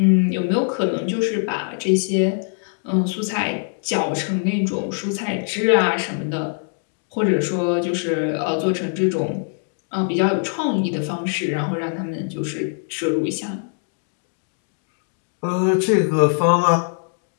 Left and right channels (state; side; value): silent; right; 56 dB below the other